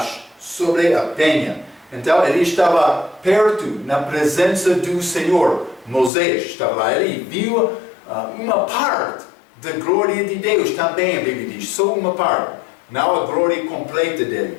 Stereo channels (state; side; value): drops out; right; at 6.1 s